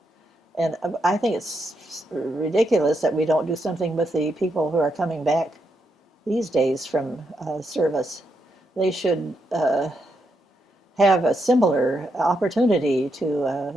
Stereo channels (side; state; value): both; normal; correlation 0.81